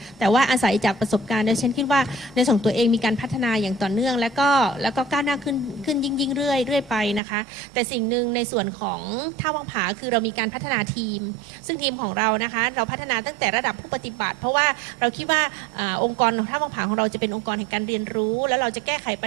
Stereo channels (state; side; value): drops out; left; at 7.2 s